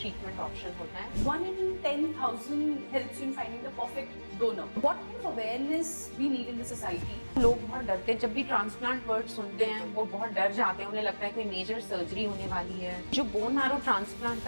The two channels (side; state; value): both; inverted; correlation -1.00